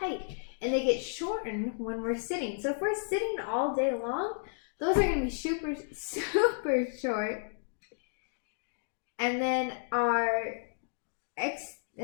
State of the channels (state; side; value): silent; right; digital silence